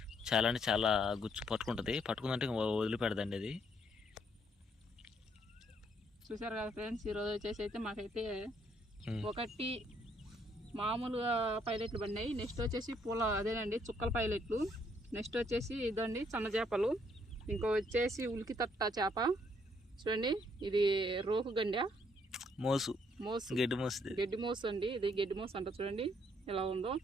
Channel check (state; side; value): normal; both; correlation 0.69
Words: చాలా అంటే చాలా గుచ్చు పట్టుకుంటుంది, పట్టుకుందంటే వదిలిపెడదండి అది. చూసారు కదా ఫ్రెండ్స్, ఈరోజు వచ్చేసి అయితే మాకైతే 1 మామూలుగా పైలెట్లు పడినాయి. నెక్స్ట్ వచ్చేసి అదేనండి చుక్కల పైలెట్లు. నెక్స్ట్ వచ్చేసి ఇదండి సన్న చేపలు. ఇంకో వచ్చేసి ఉలికి తట్ట చేప. చూడండి ఇది రోకు గండ మోసు గడ్డి మోసు అండి. ఇది గడ్డి మోసు అంట. చూడండి ఎలా ఉందో.